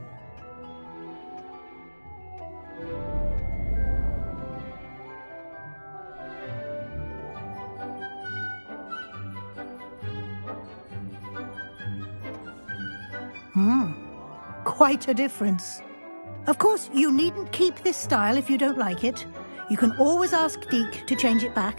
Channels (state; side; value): inverted; both; correlation -1.00